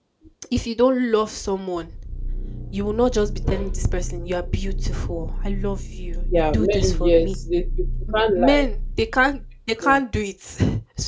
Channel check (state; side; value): identical; both; correlation 1.00